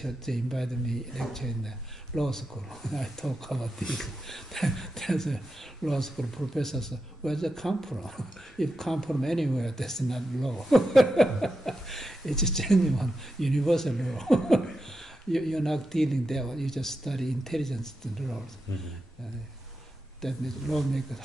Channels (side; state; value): both; normal; correlation 0.88